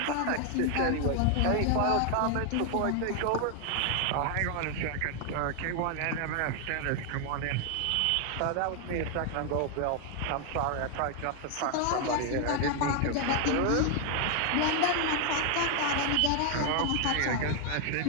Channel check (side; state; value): both; different; correlation 0.00